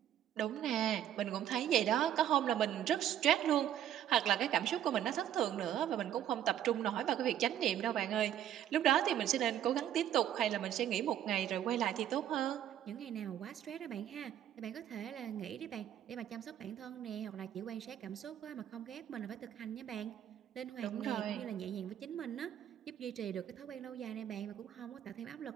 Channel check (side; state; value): left; quieter; 10.8 dB